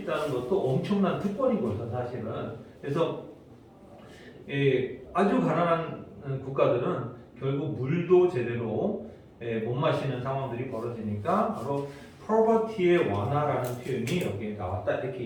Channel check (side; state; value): both; identical; correlation 1.00